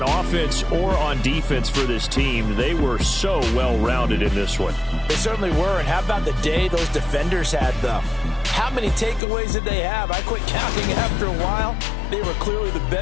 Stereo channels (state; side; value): drops out; right; at 9.2 s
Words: offense or on defense for this team. They were so well-rounded in this one. They certainly were, and how about the day those defenders had, though? How many takeaways did they have? I quit counting after a while. They were clearly the